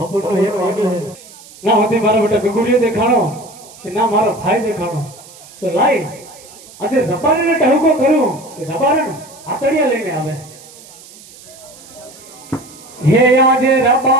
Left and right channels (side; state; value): right; noise; hiss, 21 dB below the sound